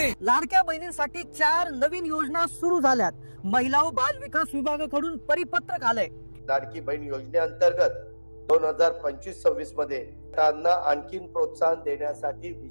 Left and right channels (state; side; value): inverted; both; correlation -1.00